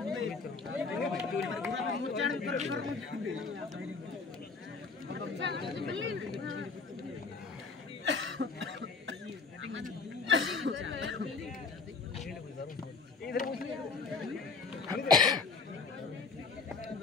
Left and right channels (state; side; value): quieter; right; 4.5 dB